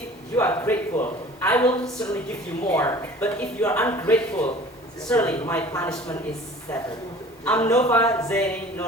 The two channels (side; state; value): both; normal; correlation 0.45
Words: you are grateful, I will certainly give you more. But if you are ungrateful, certainly my punishment is severe. I'm Nova Zaini